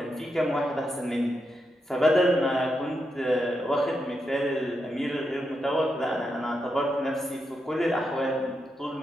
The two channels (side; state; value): both; normal; correlation 0.85